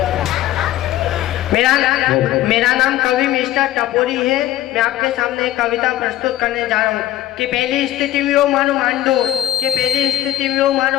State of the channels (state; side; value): quieter; right; 14.0 dB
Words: मेरा नाम कवि मिस्टर टपोरी है। मैं आपके सामने एक कविता प्रस्तुत करने जा रहा हूँ कि पहली स्थिति में मानो मांडो कि पहली स्थिति में